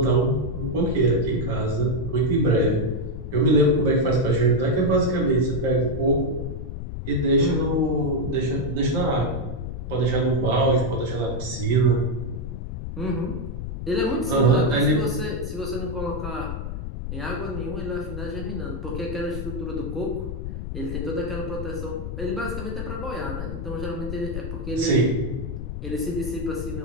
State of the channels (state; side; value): noise; left; rumble, 6 dB below the sound